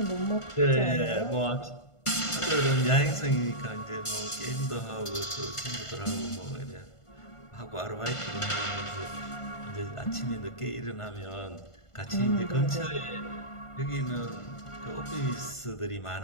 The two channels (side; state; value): right; late; 1.5 ms